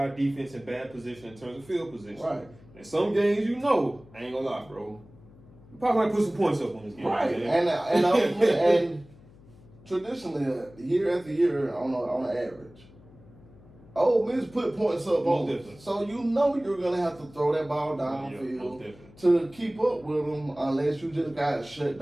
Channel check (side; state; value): left; noise; hum, 23 dB below the sound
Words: defense in bad position in terms of field position. Right. And some games, you know, I ain't gonna lie, bro. You probably might put some points up on this game. Right. Man. And traditionally, year after year, on an average, Ole Miss put points up on them. So you know you're going to have to throw that ball downfield to keep up with them, unless you just got shut